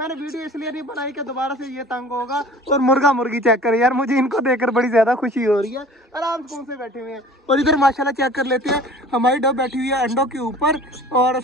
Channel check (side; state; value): both; normal; correlation 0.45